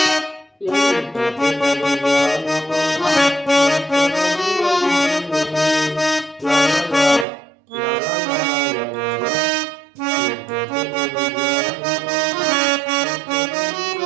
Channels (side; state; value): left; drops out; at 7.2 s